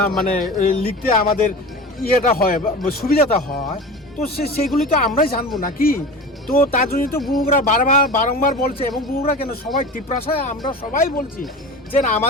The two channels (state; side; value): normal; both; correlation 0.32